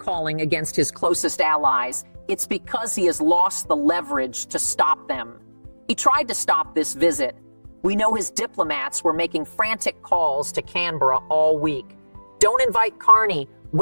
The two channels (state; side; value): inverted; both; correlation -1.00